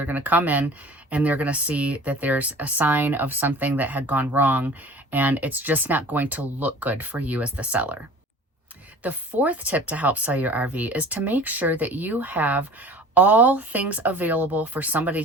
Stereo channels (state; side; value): normal; both; correlation 0.43